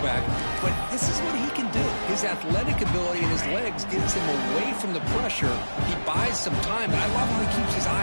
but this is what he can do. His athletic ability and his legs gets him away from the pressure. He buys some time, and I love how he keeps his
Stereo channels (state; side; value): inverted; both; correlation -1.00